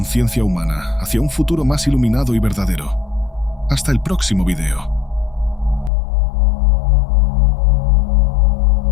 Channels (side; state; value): right; drops out; at 5.9 s